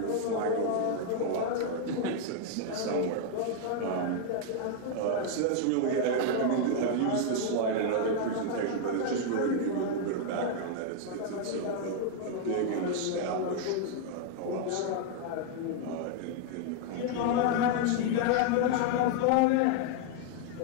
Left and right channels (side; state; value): both; different; correlation 0.00